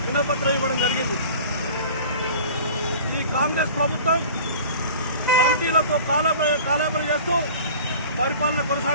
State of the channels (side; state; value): both; inverted; correlation -0.43